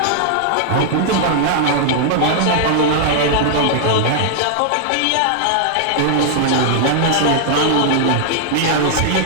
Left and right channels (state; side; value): different; both; correlation -0.01